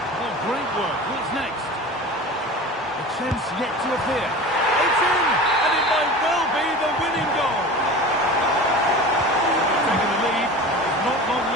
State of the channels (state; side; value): normal; both; correlation 0.35